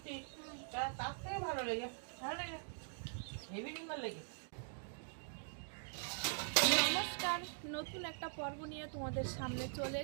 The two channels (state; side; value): silent; left; digital silence